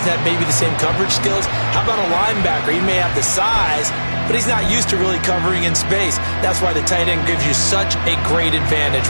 have maybe the same coverage skills? How about a linebacker? He may have the size, but he's not used to really covering in space. That's why the tight end gives you such a great advantage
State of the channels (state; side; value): inverted; both; correlation -1.00